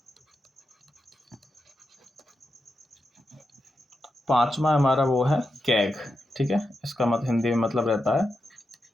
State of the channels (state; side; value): normal; both; correlation 0.87